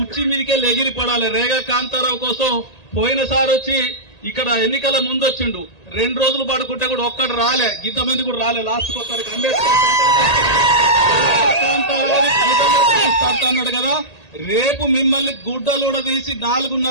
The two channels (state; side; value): late; right; 1.8 ms